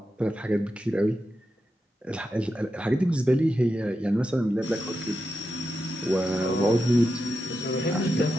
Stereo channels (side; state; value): both; normal; correlation 0.88